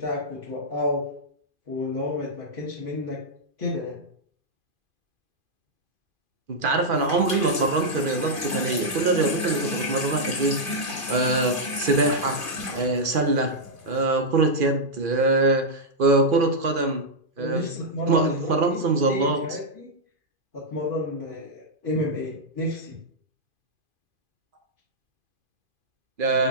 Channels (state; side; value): late; left; 2.5 ms